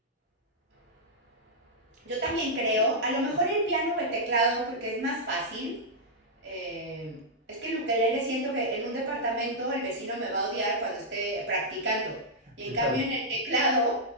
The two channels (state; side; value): normal; both; correlation -0.07